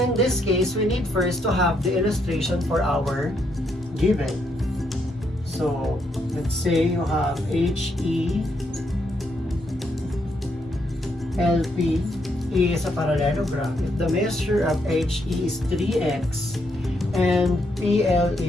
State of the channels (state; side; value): normal; both; correlation 0.76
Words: this case, we need first to have the illustration for our given. So, let's say you have HE LP is a parallelogram. If the measure of HE is 3x and PL